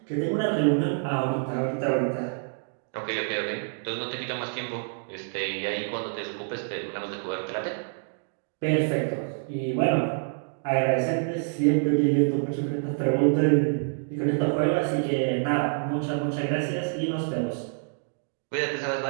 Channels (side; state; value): left; silent; digital silence